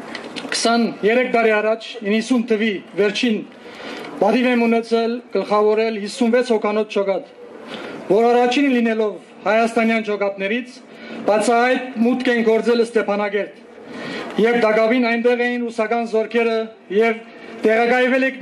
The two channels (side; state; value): both; identical; correlation 1.00